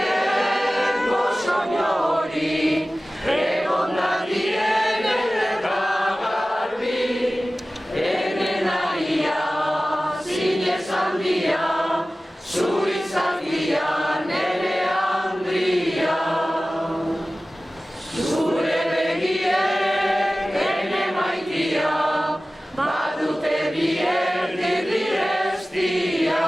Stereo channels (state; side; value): normal; both; correlation 0.96